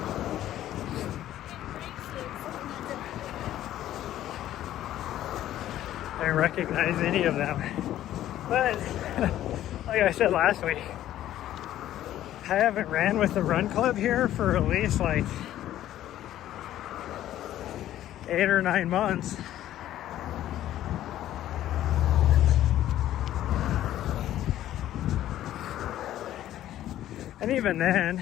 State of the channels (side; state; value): right; quieter; 12.8 dB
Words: I didn't recognize any of them, but like I said last week, I haven't ran with the run club here for at least like 8 or 9 months. And even